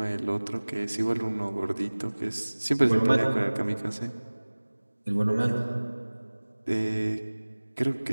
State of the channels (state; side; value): inverted; both; correlation -1.00